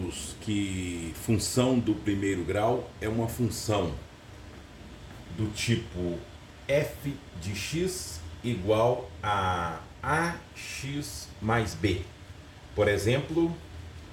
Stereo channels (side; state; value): both; identical; correlation 1.00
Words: que função do primeiro grau é uma função do tipo f de x igual a ax mais b. Por exemplo,